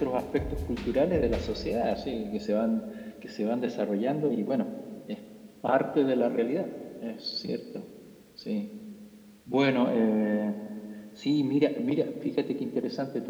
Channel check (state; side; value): identical; both; correlation 1.00